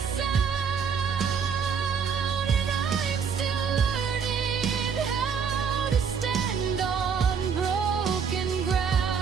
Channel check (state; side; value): quieter; left; 6.5 dB